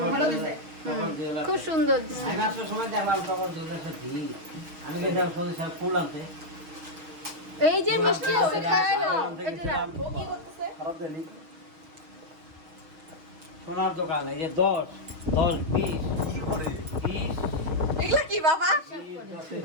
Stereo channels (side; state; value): left; late; 6.3 ms